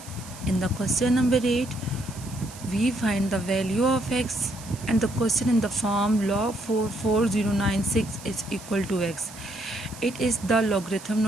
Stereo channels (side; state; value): right; noise; hiss, 17 dB below the sound